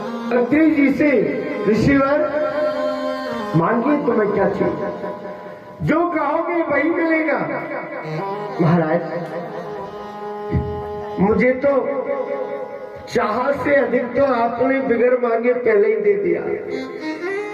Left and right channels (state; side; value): identical; both; correlation 1.00